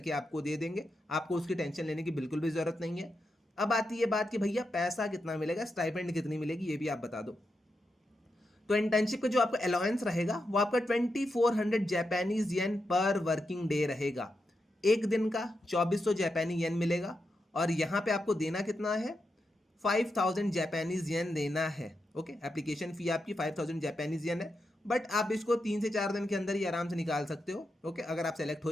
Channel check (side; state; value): both; normal; correlation 0.86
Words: आपको दे देंगे। आपको उसकी टेंशन लेने की बिल्कुल भी ज़रूरत नहीं है। अब आती है बात कि भैया पैसा कितना मिलेगा, स्टाइपेंड कितनी मिलेगी, ये भी आप बता दो। तो इंटर्नशिप का जो आपका अलाउंस रहेगा वो आपका 2400 जापानीज येन पर वर्किंग डे रहेगा। एक दिन का 2400 जापानी येन मिलेगा। और यहाँ पे आपको देना कितना है, 5000 जापानीज येन देना है। ओके, एप्लीकेशन फी आपकी 5000 जापानीज येन है। बट आप इसको 3 से 4 दिन के अंदर ही आराम से निकाल सकते हो। ओके, अगर आप सेलेक्ट हो